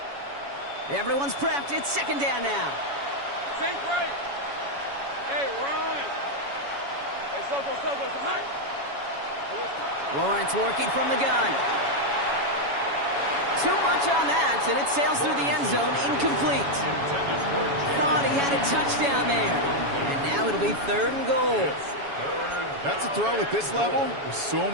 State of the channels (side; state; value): left; late; 7.1 ms